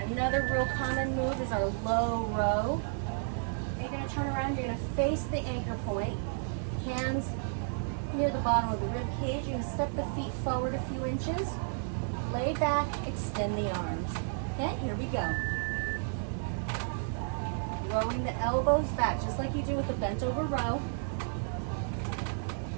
another real common move is our low row. You're gonna turn around, you're gonna face the anchor point. Hands near the bottom of the rib cage. You're gonna step the feet forward a few inches. Lay back, extend the arms. Okay, here we go. Rowing the elbows back, just like you do with the bent over row.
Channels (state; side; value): silent; left; 56 dB below the other